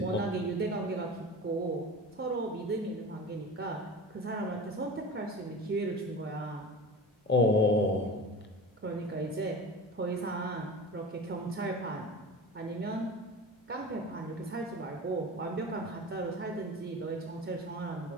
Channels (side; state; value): both; normal; correlation 0.33